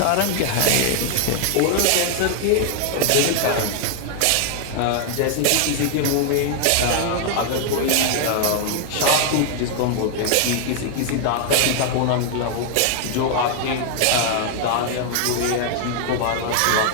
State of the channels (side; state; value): both; different; correlation 0.00